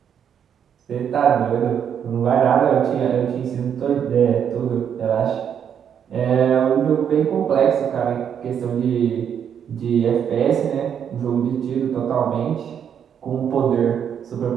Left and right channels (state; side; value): quieter; left; 8.3 dB